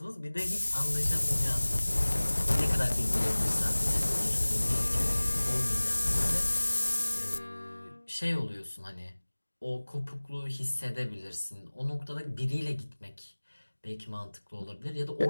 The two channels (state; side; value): inverted; both; correlation -1.00